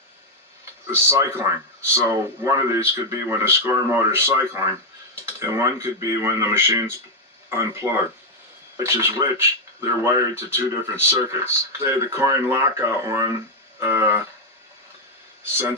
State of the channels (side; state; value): both; normal; correlation 0.02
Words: is cycling. So one of these could be when the score motor is cycling, and one could be when the machine's unplugged. Which is which, they're wired to two different circuits. Say the coin lockout one,